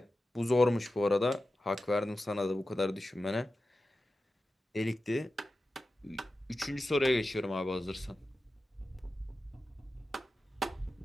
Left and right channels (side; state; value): both; normal; correlation 0.93